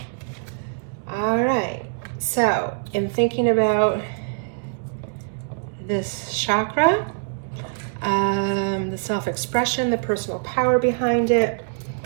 All right, so in thinking about this chakra, the self-expression, the personal power behind it,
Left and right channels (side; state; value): left; silent; digital silence